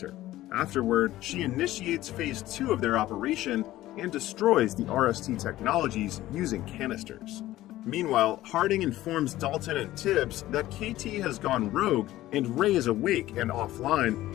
Afterward, she initiates phase 2 of their operation and destroys the RST technologies using canisters. Meanwhile, Harding informs Dalton and Tibbs that KT has gone rogue and Ray is awake and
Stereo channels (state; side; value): quieter; right; 15.5 dB